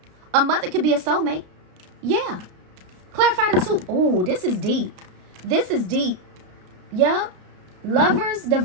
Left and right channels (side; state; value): left; late; 33 ms